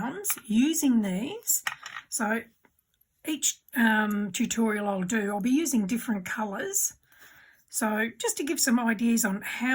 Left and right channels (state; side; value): identical; both; correlation 1.00